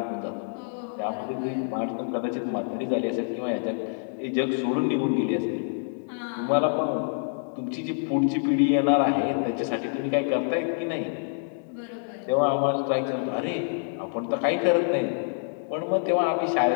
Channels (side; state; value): right; silent; 60 dB below the other